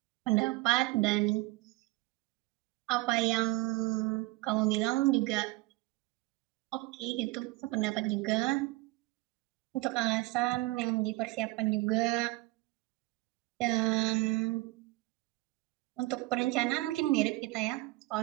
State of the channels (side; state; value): left; quieter; 21.1 dB